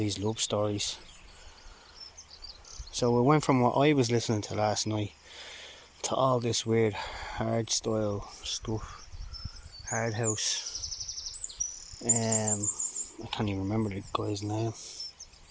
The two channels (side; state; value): both; identical; correlation 1.00